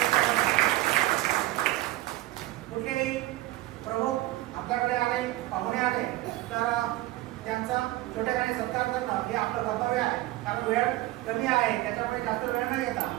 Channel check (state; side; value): quieter; left; 17.2 dB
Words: कुठलेही प्रमुख आपल्याकडे आले, पाहुणे आले तर त्यांचा छोट्याखानी सत्कार करणं हे आपलं कर्तव्य आहे, कारण वेळ कमी आहे, त्याच्यामुळे जास्त वेळ न घेता